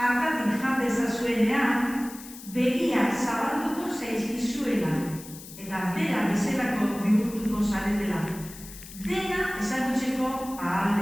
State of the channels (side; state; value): left; noise; hiss, 16 dB below the sound